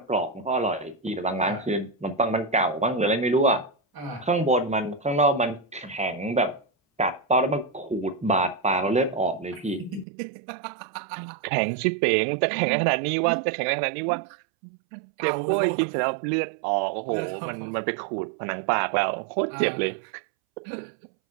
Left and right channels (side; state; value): left; drops out; at 10.1 s